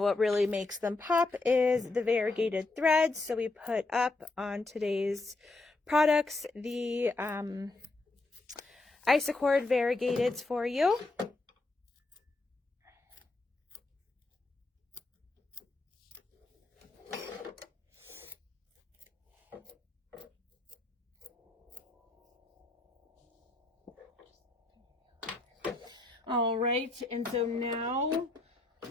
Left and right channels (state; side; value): quieter; right; 3.2 dB